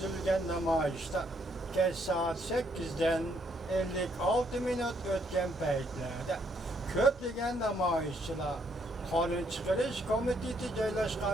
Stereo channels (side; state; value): both; normal; correlation 0.71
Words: namayişte geç saat 8'den 56 minut ötken peytlerde köplegen namayişçiler kanun çıkarış komitesi